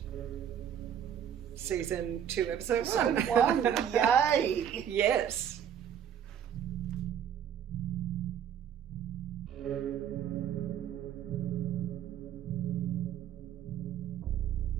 season 2, episode 1. Yay! Yes.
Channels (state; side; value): quieter; left; 9.2 dB